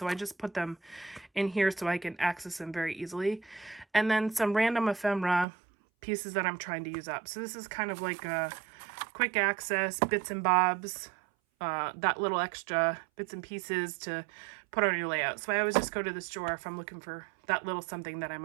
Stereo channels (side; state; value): left; drops out; at 5.5 s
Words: I just put them in here so I can access them very easily. And then some random ephemera pieces that I'm trying to use up. So this is kind of like a quick access, bits and bobs, that little extra bits and pieces to put on your layout. So I always just go to this drawer if I'm looking for that little something that I